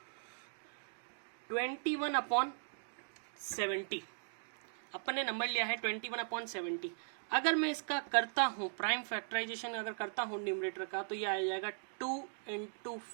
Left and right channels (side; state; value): left; silent; digital silence